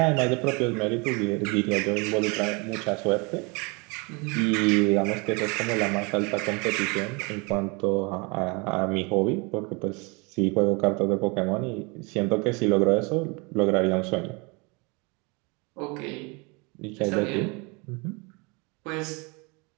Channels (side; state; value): left; quieter; 29.3 dB